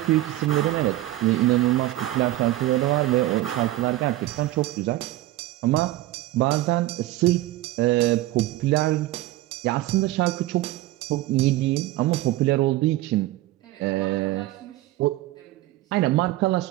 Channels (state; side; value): quieter; left; 16.5 dB